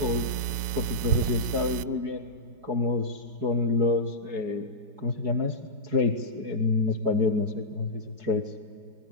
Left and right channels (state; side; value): late; left; 5.4 ms